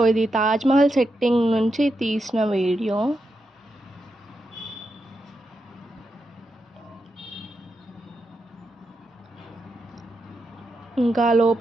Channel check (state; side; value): normal; both; correlation 0.86